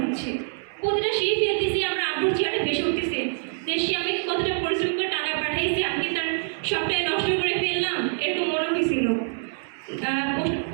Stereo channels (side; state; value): left; silent; 60 dB below the other